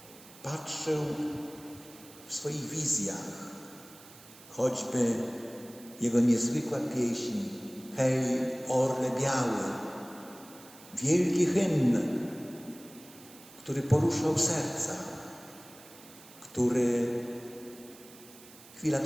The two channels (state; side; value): noise; right; hiss, 20 dB below the sound